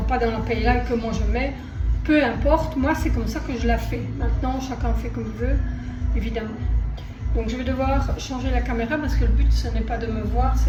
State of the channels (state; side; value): identical; both; correlation 1.00